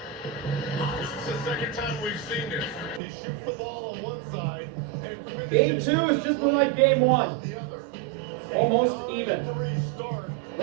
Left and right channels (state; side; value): drops out; left; at 3.0 s